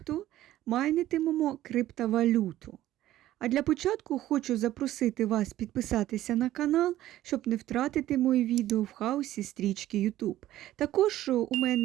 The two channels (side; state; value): left; quieter; 14.1 dB